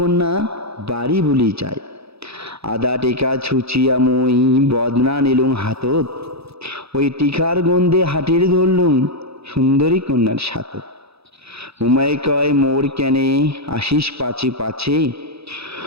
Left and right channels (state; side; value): late; left; 0.78 ms